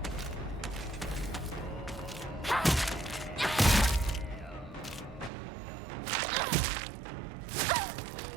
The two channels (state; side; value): drops out; left; at 5.3 s